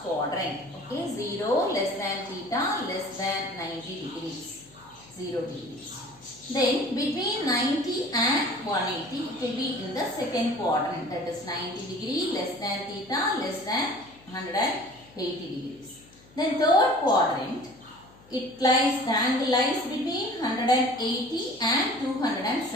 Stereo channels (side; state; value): left; noise; hum, 26 dB below the sound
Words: quadrant. Okay, 0 less than theta less than 90 degrees. 0 degrees. Then between 90 and 180 it will be in the second quadrant, that is 90 degree less than theta less than 180 degrees. Then third quadrant, it lies, the angle lies between 180 and